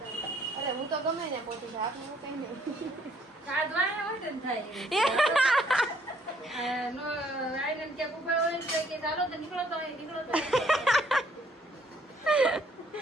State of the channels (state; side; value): normal; both; correlation 0.65